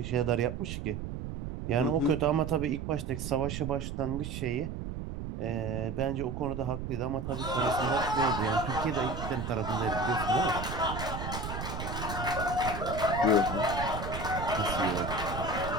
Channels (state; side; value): noise; right; rumble, 6 dB below the sound